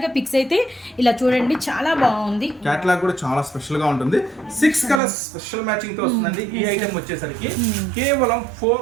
గా పిక్స్ అయితే ఇలా చూడండి, చాలా బాగుంది. క్యాటలాగ్ కూడా చాలా స్పెషల్ గా ఉంటుంది. 6 కలర్స్ స్పెషల్ మ్యాచింగ్ తో వస్తుందండి. ఈ ఐటమ్ వచ్చేసరికి కేవలం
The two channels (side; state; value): left; drops out; at 5.0 s